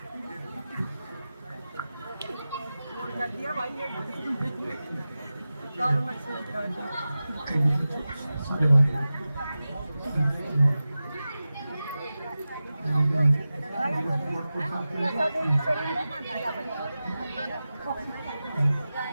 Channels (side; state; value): both; inverted; correlation -0.95